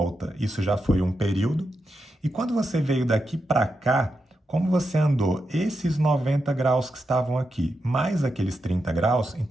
isso já foi um período, e quando você veio daqui para cá, como você andou esses 90 graus que estavam aqui, mais aqueles 30 graus,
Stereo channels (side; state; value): both; normal; correlation 0.87